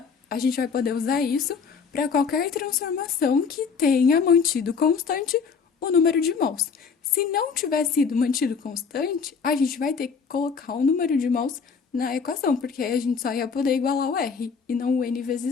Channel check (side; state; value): right; quieter; 5.7 dB